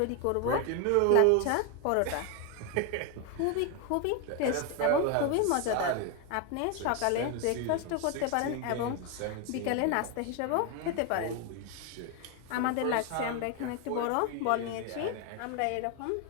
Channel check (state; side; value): different; both; correlation 0.01